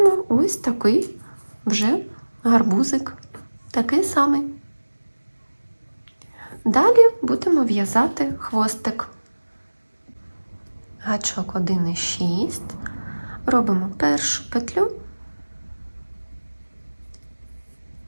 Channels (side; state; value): both; inverted; correlation -1.00